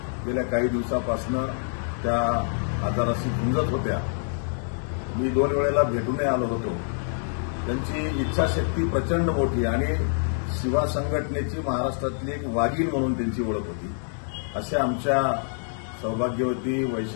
गेल्या काही दिवसापासून त्या आजाराशी झुंजत होत्या। मी 2 वेळेला भेटूनही आलो होतो। त्यांची इच्छाशक्ती प्रचंड मोठी आणि शिवा संघटनेची महाराष्ट्रातली एक वाघीण म्हणून त्यांची ओळख होती। अशा आमच्या सौभाग्यवती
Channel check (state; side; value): silent; right; digital silence